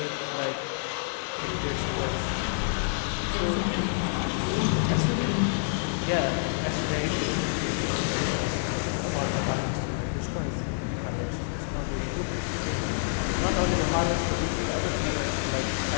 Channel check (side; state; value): right; silent; digital silence